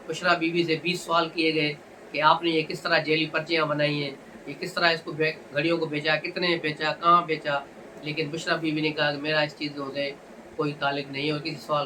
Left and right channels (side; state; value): both; identical; correlation 1.00